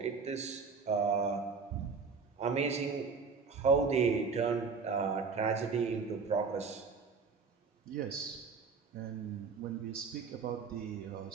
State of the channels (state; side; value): quieter; left; 5.1 dB